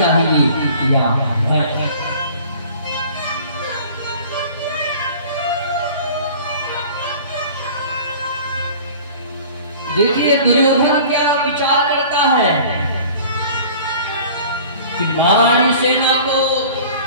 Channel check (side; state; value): both; inverted; correlation -0.45